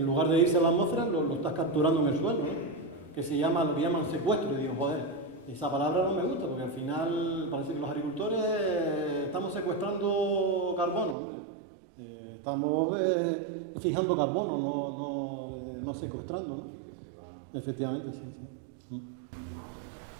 lugar de irse a la atmósfera, lo estás capturando en el suelo, ¿no? Lo que llaman secuestro. Y digo, joder, esa palabra no me gusta, porque al final parece que los agricultores estamos secuestrando carbono, estamos fijando carbono, no secuestrando, ¿no? Efectivamente, sí.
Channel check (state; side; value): drops out; left; at 11.2 s